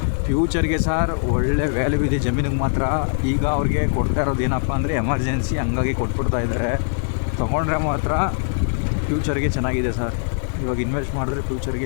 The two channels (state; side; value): silent; right; digital silence